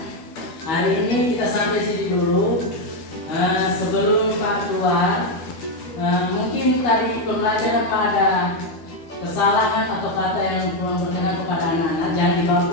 hari ini kita sampai sini dulu. Sebelum Pak keluar, mungkin tadi pembelajaran Pak ada kesalahan atau kata yang kurang berkenan kepada anak-anak, jangan dibawa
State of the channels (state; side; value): late; right; 12 ms